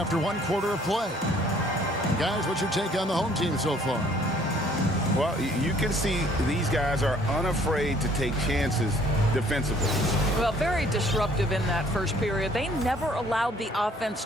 1 quarter of play. Guys, what's your take on the home team so far? Well, you can see these guys are unafraid to take chances defensively. Well, very disruptive in that first period. They never allowed the offense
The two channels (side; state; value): both; normal; correlation 0.59